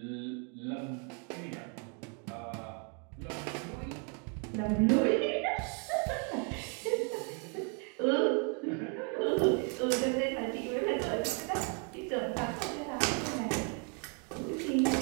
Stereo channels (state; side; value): quieter; left; 38.1 dB